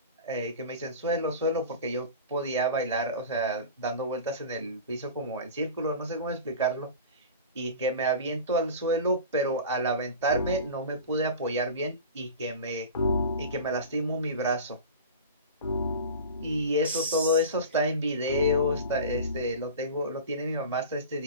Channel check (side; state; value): both; inverted; correlation -0.34